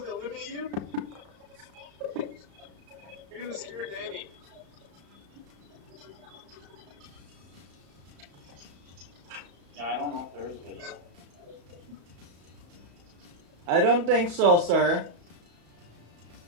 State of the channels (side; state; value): left; late; 35 ms